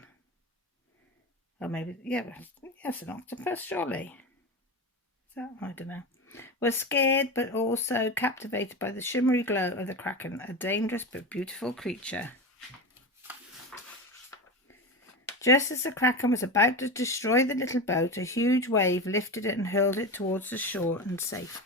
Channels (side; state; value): both; normal; correlation 0.23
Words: Or maybe, yeah, it's an octopus, surely. Is that? I don't know. Was scared but also captivated by the shimmery glow of the kraken, a dangerous but beautiful creature. Just as the kraken was about to destroy the little boat, a huge wave lifted it and hurled it towards the shore and